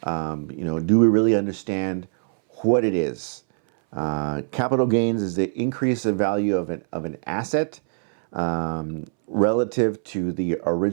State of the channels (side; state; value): left; silent; 63 dB below the other